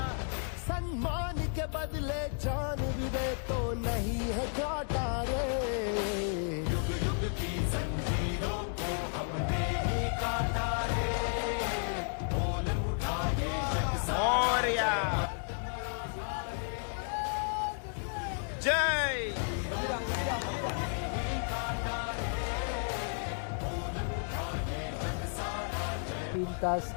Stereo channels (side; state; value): right; silent; 56 dB below the other